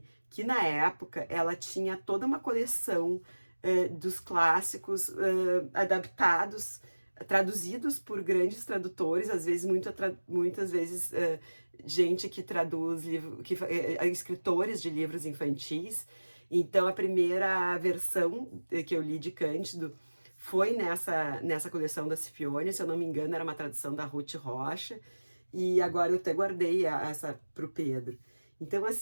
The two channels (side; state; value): both; inverted; correlation -1.00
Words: que na época ela tinha toda uma coleção dos clássicos adaptados, traduzidos por grandes tradutores, às vezes muitas vezes gente que traduz escritores de livros infantis. Então a primeira versão que eu li de Cândido foi nessa coleção da Scipione, se eu não me engano era uma tradução da Ruth Rocha, e agora eu até guardei essa para o Pedro. Então